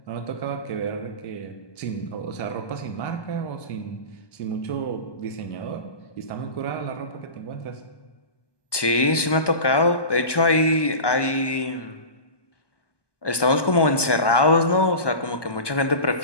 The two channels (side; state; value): right; late; 1.2 ms